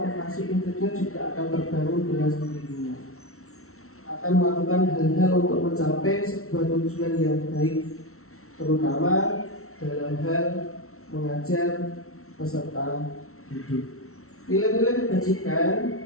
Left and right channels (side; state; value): right; late; 0.63 ms